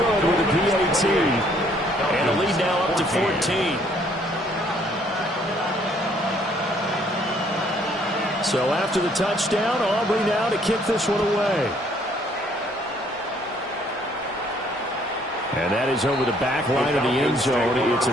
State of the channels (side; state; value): both; normal; correlation 0.64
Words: with a PAT. And a lead now up to 14. So after the touchdown, Aubrey now to kick this one away. And that is over the back line of the end zone. It's a